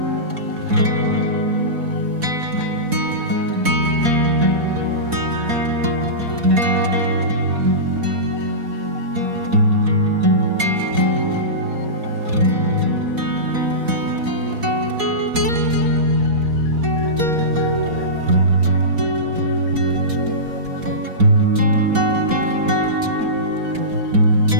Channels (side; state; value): left; late; 4.1 ms